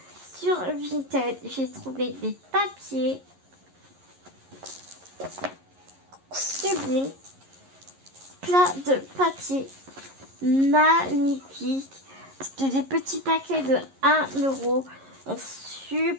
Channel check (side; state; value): left; late; 11 ms